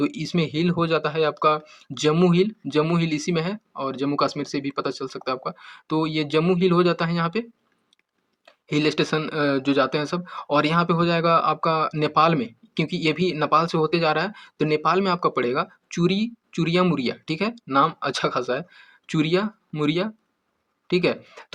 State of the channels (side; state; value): both; identical; correlation 1.00